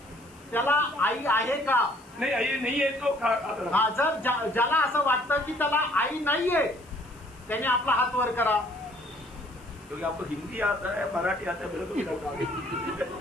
त्याला आई आहे का? नहीं ये नहीं है तो हाथ रखो. हा, जर ज्याला असं वाटतं की त्याला आई नाहीये त्याने आपला हात वर करा. क्योंकि आपको हिंदी आता है, मराठी आता है, मेरे को भी लगता है.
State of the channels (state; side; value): noise; left; hiss, 27 dB below the sound